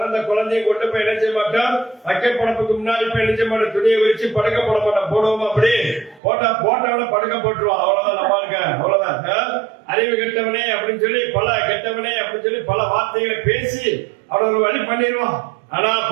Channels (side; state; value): left; drops out; at 6.2 s